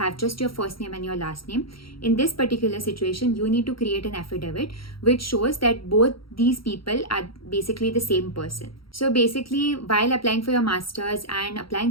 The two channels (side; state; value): right; late; 0.74 ms